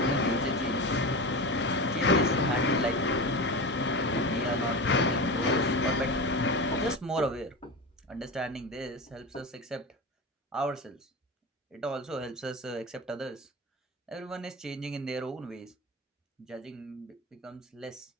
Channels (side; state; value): both; normal; correlation 0.25